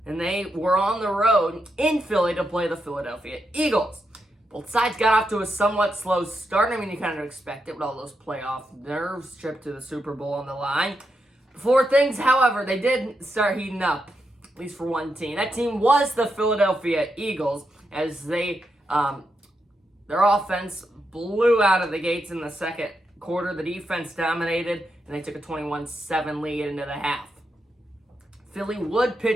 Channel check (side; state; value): both; normal; correlation 0.84